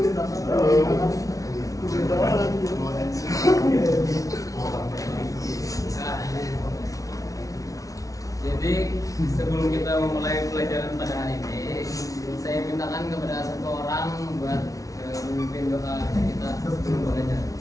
Jadi sebelum kita memulai pelajaran pada hari ini, saya mintakan kepada satu orang buat memimpin doa kita sebelum belajar.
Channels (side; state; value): right; late; 0.17 ms